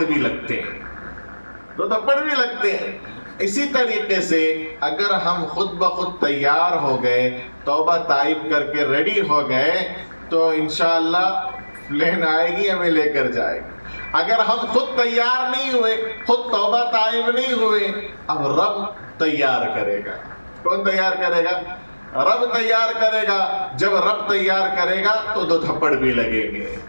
بھی لگتے ہیں, 2 تھپڑ بھی لگتے ہیں. اسی طریقے سے اگر ہم خود بخود تیار ہو گئے, توبہ طائب کر کے ریڈی ہو گئے, تو انشاءاللہ پلین آئے گی, ہمیں لے کر جائے گی. اگر ہم خود تیار نہیں ہوئے, خود توبہ طائب نہیں ہوئے, اب رب تیار کرے گا. کون تیار کرے گا؟ رب تیار کرے گا. جب رب تیار کرے گا تو 2 تھپڑ بھی لگیں گے.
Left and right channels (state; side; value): inverted; both; correlation -1.00